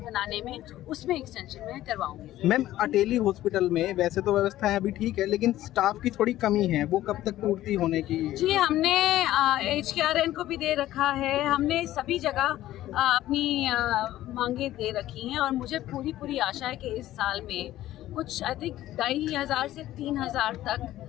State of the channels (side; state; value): right; quieter; 14.3 dB